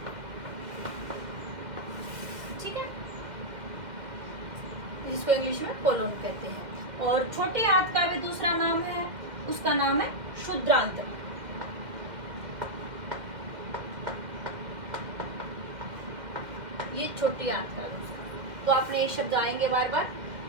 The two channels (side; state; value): left; late; 2.1 ms